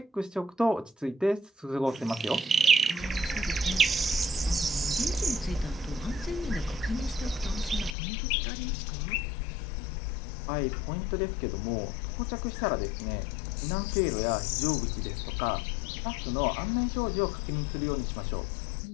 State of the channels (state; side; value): drops out; right; at 8.0 s